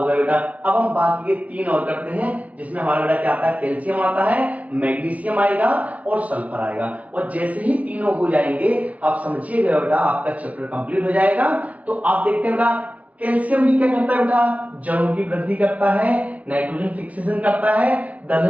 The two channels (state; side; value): late; left; 0.070 ms